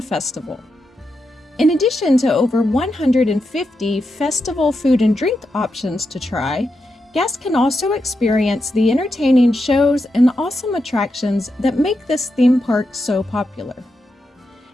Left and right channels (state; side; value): normal; both; correlation 0.86